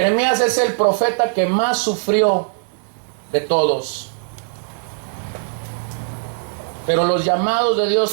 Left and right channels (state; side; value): silent; left; digital silence